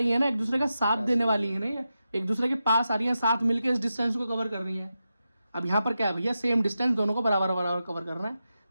है ना, एक दूसरे का साथ देने वाली है, नहीं एक दूसरे के पास आ रही है, साथ मिलकर इस डिस्टेंस को कवर कर रही है। अब यहाँ पर क्या है भैया, सेम डिस्टेंस दोनों को बराबर बराबर कवर करना है,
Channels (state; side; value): inverted; both; correlation -0.90